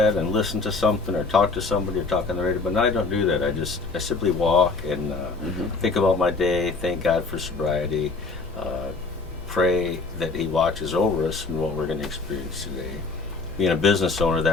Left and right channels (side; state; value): right; quieter; 4.0 dB